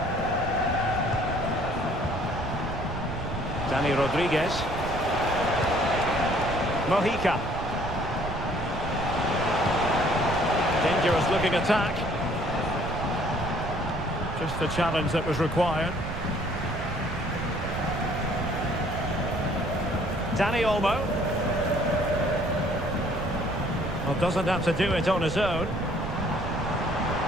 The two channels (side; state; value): right; noise; rumble, 6 dB below the sound